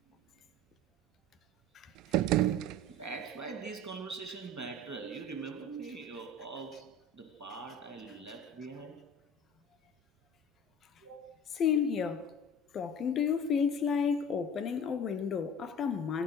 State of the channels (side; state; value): both; normal; correlation 0.40